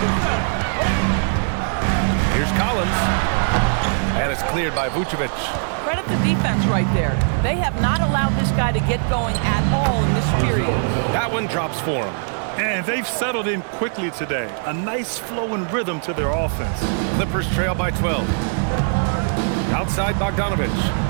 Here's Collins. And it's cleared by Vucevic. Credit the defense right there. They have not allowed this guy to get going at all in this period. That one drops for him. And they've settled in quickly today. A nice flow and rhythm to their offense. Clippers trail by 12. Outside Bogdanovic.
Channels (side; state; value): left; silent; 65 dB below the other